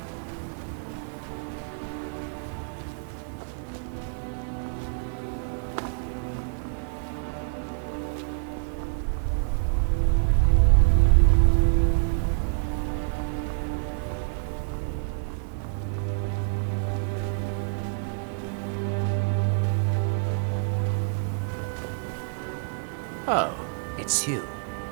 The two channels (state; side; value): silent; left; digital silence